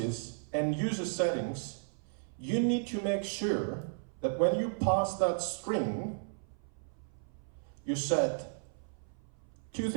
and user settings, you need to make sure that when you pass that string, you set two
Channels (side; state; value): left; silent; 55 dB below the other